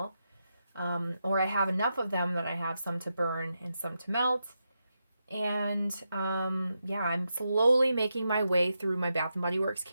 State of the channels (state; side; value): inverted; both; correlation -0.86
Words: Or I have enough of them that I have some to burn and some to melt. And yeah, I'm slowly making my way through my Bath & Body Works